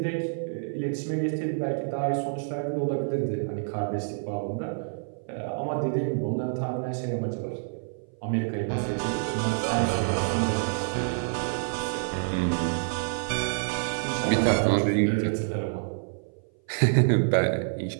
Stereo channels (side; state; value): left; silent; 57 dB below the other